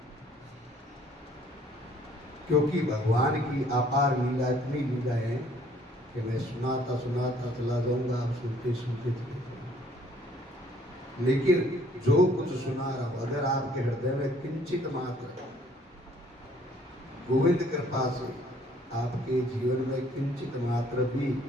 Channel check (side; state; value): both; normal; correlation 0.60